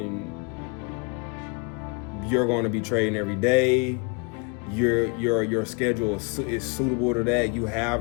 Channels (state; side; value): quieter; right; 32.2 dB